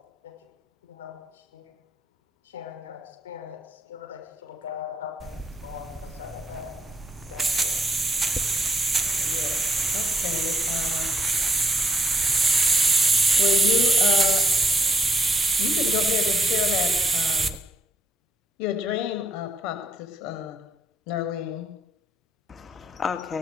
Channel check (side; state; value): both; normal; correlation 0.74